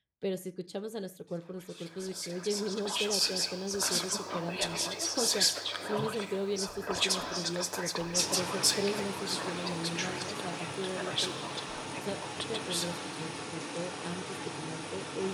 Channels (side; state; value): both; identical; correlation 1.00